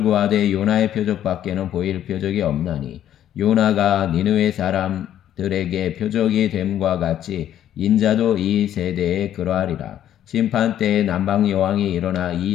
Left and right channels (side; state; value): right; quieter; 11.1 dB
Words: 구하되 요나의 표적밖에는 보일 표적이 없나니 요나가 니느웨 사람들에게 표적이 됨과 같이 인자도 이 세대에 그러하리라. 심판 때에 남방 여왕이 일어나 이